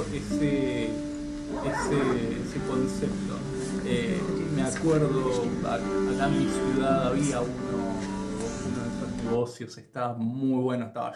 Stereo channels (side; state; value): both; identical; correlation 1.00